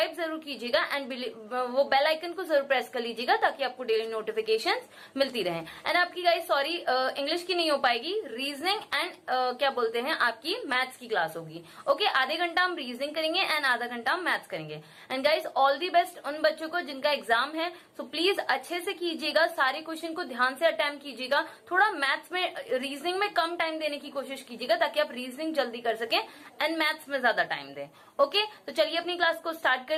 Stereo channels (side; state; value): both; identical; correlation 1.00